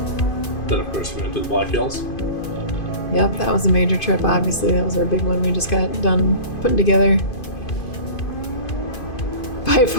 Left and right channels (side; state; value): right; late; 2.5 ms